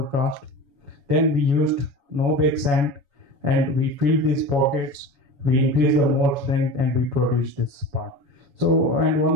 cost. Then we used no bake sand and we filled these pockets, we increased the mold strength and we produced this part. So, and one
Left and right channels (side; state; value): left; late; 7.1 ms